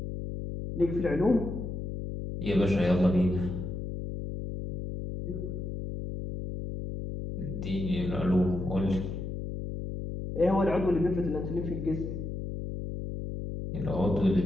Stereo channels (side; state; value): left; noise; hum, 5 dB below the sound